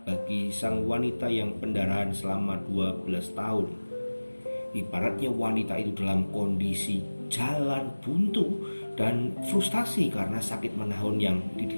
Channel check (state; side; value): inverted; both; correlation -1.00